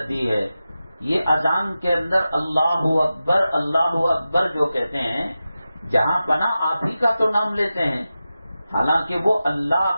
دی ہے. یہ اذان کے اندر اللہ اکبر جو کہتے ہیں، جہاں پناہ آپ ہی کا تو نام لیتے ہیں، حالانکہ وہ اللہ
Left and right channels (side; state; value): both; inverted; correlation -0.93